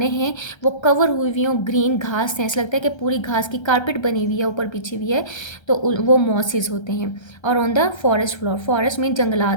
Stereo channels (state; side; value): late; right; 1.3 ms